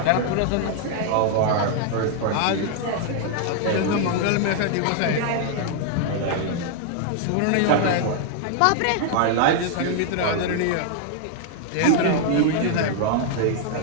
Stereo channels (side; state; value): both; different; correlation 0.00